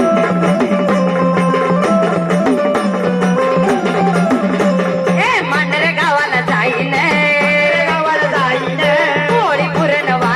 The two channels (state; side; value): identical; both; correlation 1.00